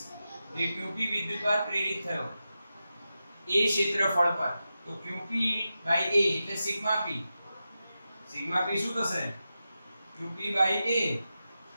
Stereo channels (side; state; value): both; inverted; correlation -0.91